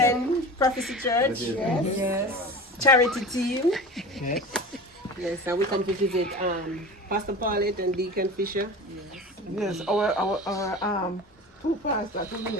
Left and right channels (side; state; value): both; normal; correlation 0.33